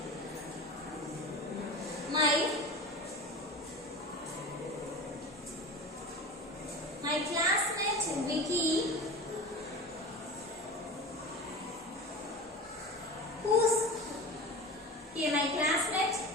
Okay, my classmate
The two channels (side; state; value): both; normal; correlation 0.32